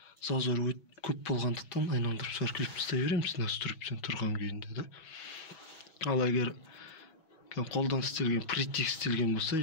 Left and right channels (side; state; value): right; late; 6.1 ms